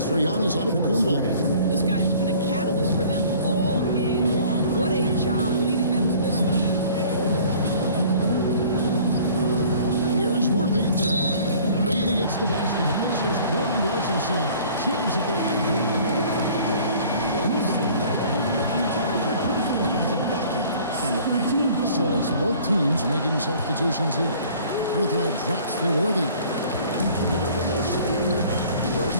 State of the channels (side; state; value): both; inverted; correlation -0.51